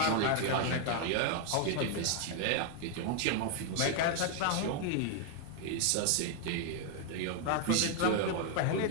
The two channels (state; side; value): different; both; correlation 0.00